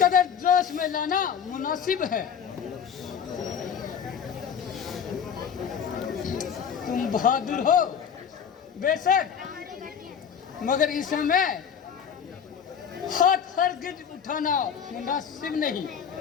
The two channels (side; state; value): right; quieter; 7.7 dB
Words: कदर जोश में लाना मुनासिब है। तुम बहादुर हो बेशक, मगर इस समय हाथ हरगिज उठाना मुनासिब नहीं।